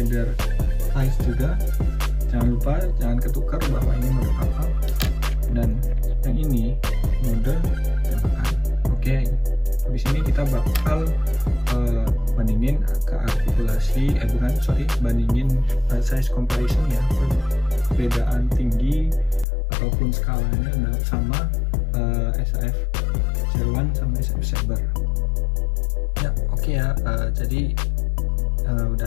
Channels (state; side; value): drops out; right; at 19.5 s